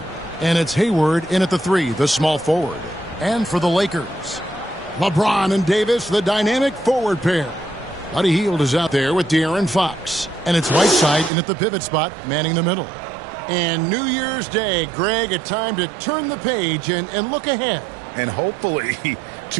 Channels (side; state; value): left; drops out; at 11.3 s